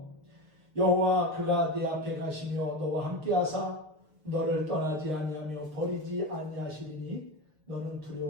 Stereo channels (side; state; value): left; late; 6.6 ms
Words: 여호와 그가 네 앞에 가시며 너와 함께하사 너를 떠나지 아니하며 버리지 아니하시리니 너는